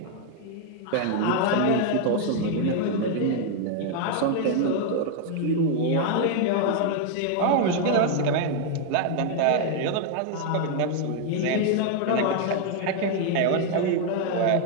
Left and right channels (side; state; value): both; different; correlation 0.00